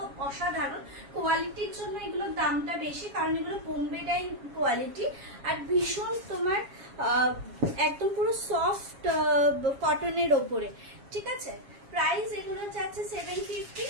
অসাধারণ। কোয়ালিটির জন্য এগুলোর দামটা বেশি, কারণ এগুলো বোম্বে ডাইং কোয়ালিটি আর ভীষণ তোমার একদম পুরো সফট কটনের ওপরে, ঠিক আছে। প্রাইস এগুলো যাচ্ছে 750,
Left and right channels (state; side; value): late; left; 7.3 ms